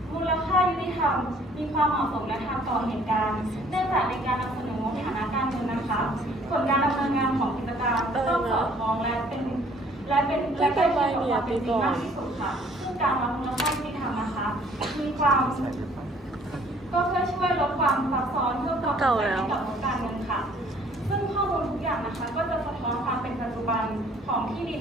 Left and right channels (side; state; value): both; normal; correlation 0.58